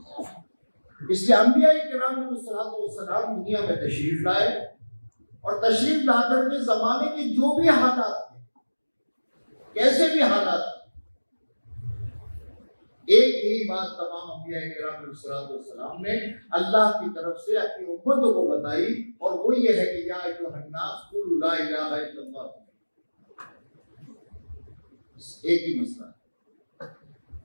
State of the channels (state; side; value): inverted; both; correlation -1.00